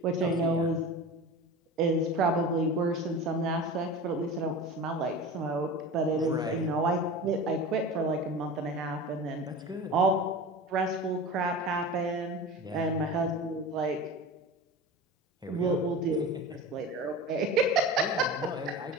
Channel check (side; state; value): both; normal; correlation 0.32